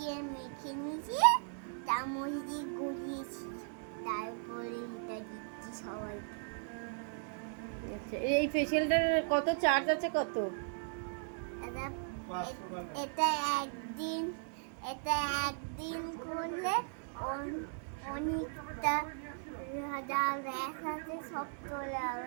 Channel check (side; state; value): left; silent; digital silence